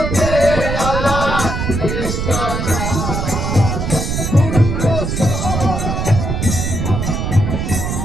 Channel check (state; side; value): noise; right; rumble, 2 dB below the sound